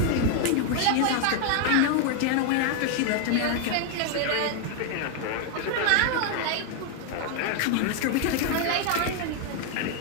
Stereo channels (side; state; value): both; different; correlation 0.00